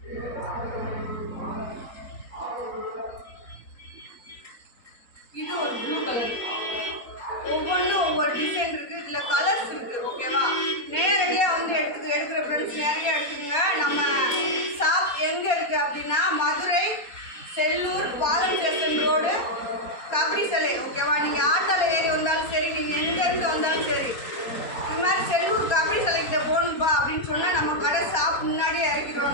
இது ஒரு ப்ளூ கலர். ஒவ்வொன்றும் ஒவ்வொரு டிசைன் இருக்குது. இதில் கலர்ஸ் இருக்குது. ஓகேவா? நேரடியாக வந்து எடுக்கிற ஃப்ரெண்ட்ஸ் நேரடியாக எடுத்துக்கோங்க. நம்ம ஷாப் எங்கே இருக்குது அப்படின்னா மதுரை செல்லூர் பாலம் ஸ்டேஷன் ரோடு கபடி சிலை. ஓகேவா? நீங்கள் ஆட்டோவில் ஏறி வந்தாலும் சரி, நீங்கள் எங்கேருந்து வந்தாலும் சரி, இது மாதிரி செல்லூர் கபடி சிலைக்கிட்ட போகணும்பா அப்படின்னு சொன்னால் நம்ம கடை ஷாப் முன்னாடியே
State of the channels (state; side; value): late; right; 4.3 ms